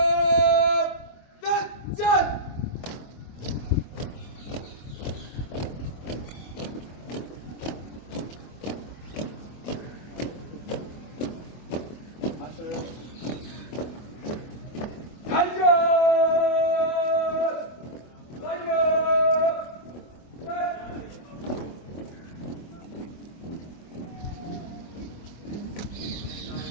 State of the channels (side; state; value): right; late; 24 ms